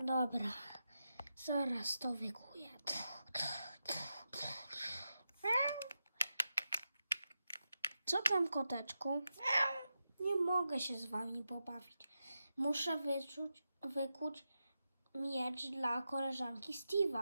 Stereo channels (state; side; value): inverted; both; correlation -0.89